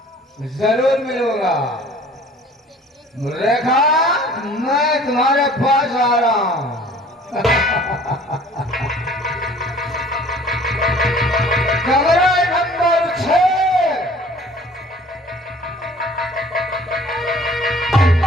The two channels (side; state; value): both; normal; correlation 0.50